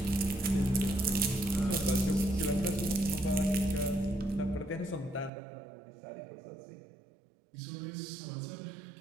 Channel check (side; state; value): left; drops out; at 5.3 s